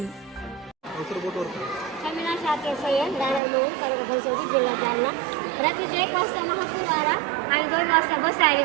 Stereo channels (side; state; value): left; drops out; at 3.4 s